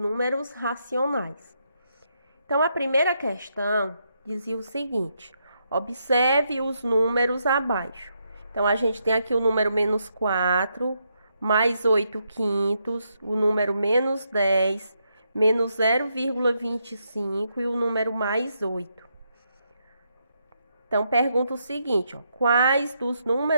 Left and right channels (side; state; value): both; inverted; correlation -0.79